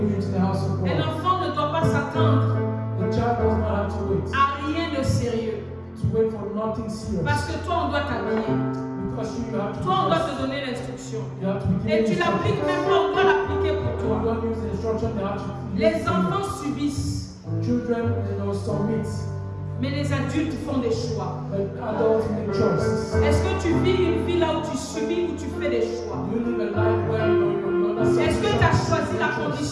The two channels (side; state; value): both; identical; correlation 1.00